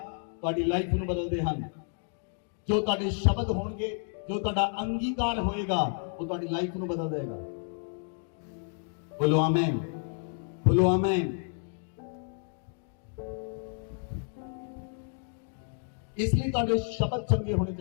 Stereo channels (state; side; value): silent; right; 57 dB below the other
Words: ਤੁਹਾਡੀ ਲਾਈਫ ਨੂੰ ਬਦਲਦੇ ਹਨ। ਜੋ ਤੁਹਾਡੇ ਸ਼ਬਦ ਹੋਣਗੇ, ਜੋ ਤੁਹਾਡਾ ਅੰਗੀਕਾਰ ਹੋਏਗਾ, ਉਹ ਤੁਹਾਡੀ ਲਾਈਫ ਨੂੰ ਬਦਲ ਦੇਗਾ। ਬੋਲੋ ਆਮੇਨ, ਬੋਲੋ ਆਮੇਨ। ਇਸ ਲਈ ਤੁਹਾਡੇ ਸ਼ਬਦ ਚੰਗੇ ਹੋਣੇ